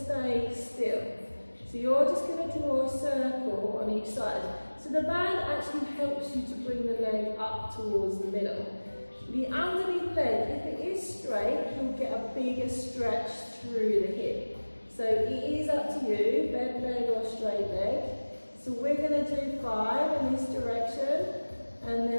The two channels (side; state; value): both; inverted; correlation -1.00